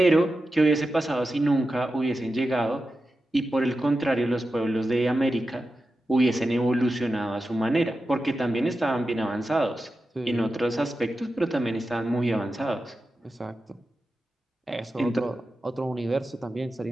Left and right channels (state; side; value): normal; both; correlation 0.91